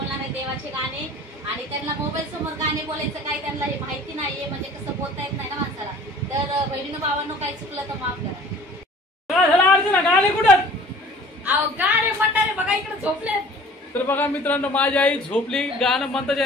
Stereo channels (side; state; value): both; normal; correlation 0.48